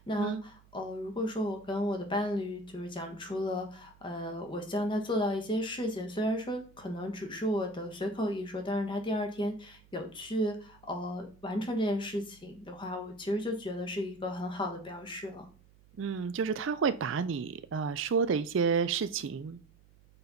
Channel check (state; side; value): noise; right; hum, 27 dB below the sound